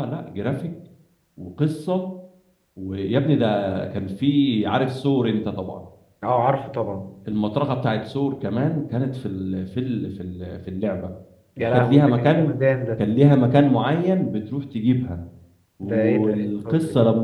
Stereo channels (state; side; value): identical; both; correlation 1.00